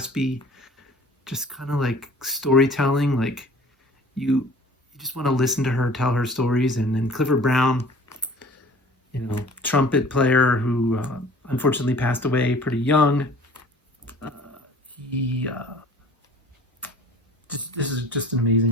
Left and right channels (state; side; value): normal; both; correlation 0.48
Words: just kind of like storytelling. Like you just want to listen to her tell her stories. And then Clifford Brown, trumpet player who unfortunately passed away pretty young. Uh, he this is just an